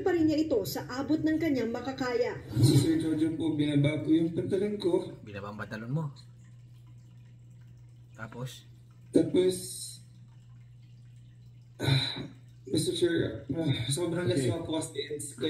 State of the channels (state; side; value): identical; both; correlation 1.00